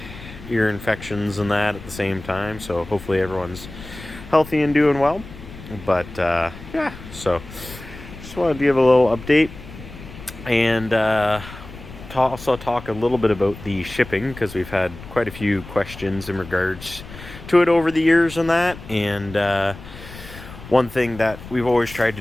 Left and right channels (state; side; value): noise; left; rumble, 15 dB below the sound